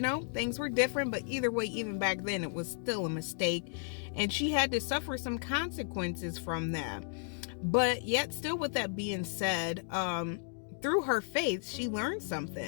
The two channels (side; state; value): right; silent; digital silence